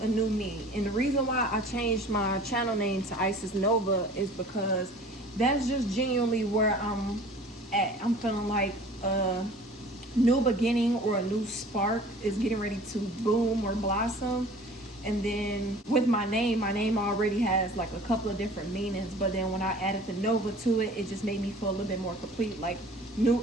new me. And the reason why I changed my channel name to Isis Nova is because that's just genuinely where I'm at. I'm feeling like new beginning or a new spark is getting ready to bloom or blossom. And then with my name already has like a couple of different meanings, but then when I added the Nova to it, it just made me feel a little bit more complete, like new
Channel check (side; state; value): both; normal; correlation 0.46